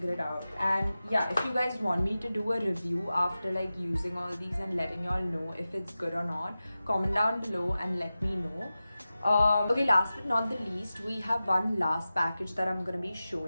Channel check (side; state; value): both; inverted; correlation -0.94